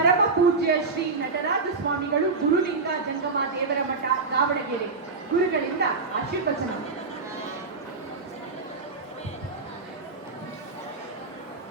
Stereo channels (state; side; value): quieter; left; 4.2 dB